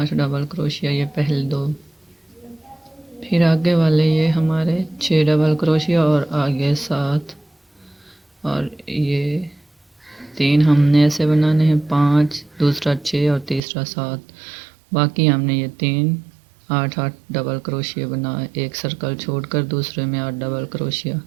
डबल क्रोशिया, ये पहले 2। फिर आगे वाले ये हमारे 6 डबल क्रोशिया और आगे 7, और ये 3 हमने ऐसे बनाने हैं, 5, दूसरा 6 और तीसरा 7। बाकी हमने ये 3 8 डबल क्रोशिया बनाए, एक सर्कल छोड़कर दूसरे में 8 डबल क्रोशिया।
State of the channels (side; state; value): left; drops out; at 13.6 s